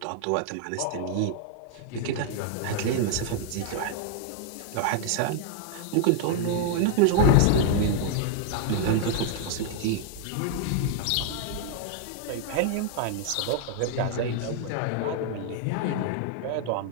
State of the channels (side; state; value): both; different; correlation 0.00